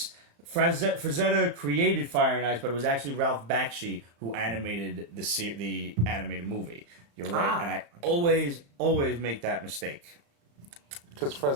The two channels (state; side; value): late; left; 35 ms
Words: Frazetta created Fire and Ice, but it was actually Ralph Bakshi who animated the animated movie. You're right, and I always make that mistake. because